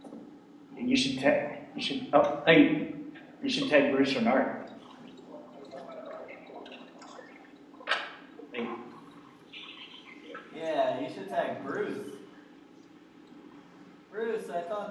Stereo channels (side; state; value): both; identical; correlation 1.00